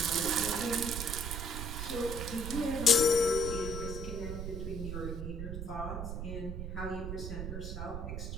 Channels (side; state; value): right; noise; rumble, 4 dB below the sound